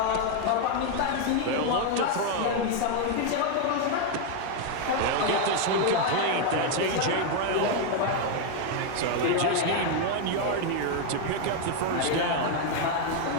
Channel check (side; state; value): both; different; correlation 0.01